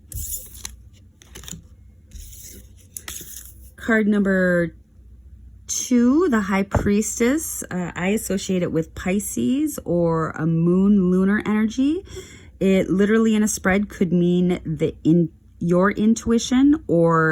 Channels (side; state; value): both; identical; correlation 1.00